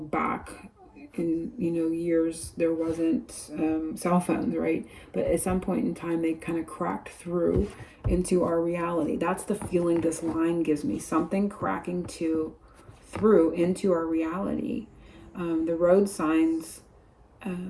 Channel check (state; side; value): identical; both; correlation 1.00